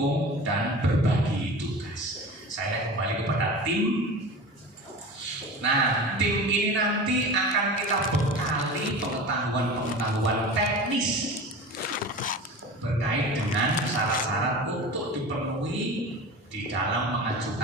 dan berbagi tugas. Saya kembali kepada tim. Nah, tim ini nanti akan kita bekali pengetahuan-pengetahuan teknis berkait dengan syarat-syarat untuk dipenuhi di dalam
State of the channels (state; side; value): normal; both; correlation 0.33